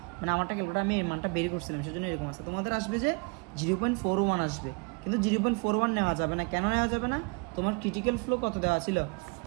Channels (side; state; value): left; quieter; 31.8 dB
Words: মানে আমারটা ক্যালকুলেটার আমি এই মানটা বের করছিলাম সেজন্য এরকম আসছে। তোমাদের আসবে যে 0.41 আসবে, কিন্তু 0.41 নেওয়া যাবে না, কেন নেওয়া যাবে না, তোমার ক্রিটিক্যাল ফ্লো কত দেওয়া ছিল